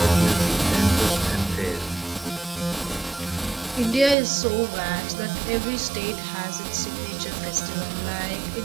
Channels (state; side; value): drops out; left; at 4.2 s